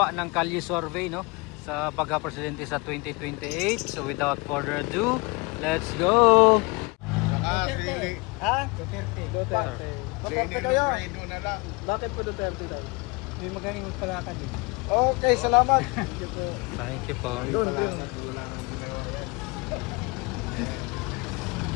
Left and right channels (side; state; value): right; quieter; 27.4 dB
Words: ng kalye survey, no, sa pagka-presidente sa 2028. So without further ado, let's go! Duterte. Ha? Duterte. Duterte kayo. Bakit po Duterte daw? May magaling magpalakad eh. Okay, salamat. Thank you po.